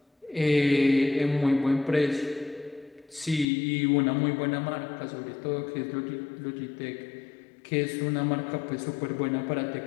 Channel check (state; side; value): drops out; right; at 3.5 s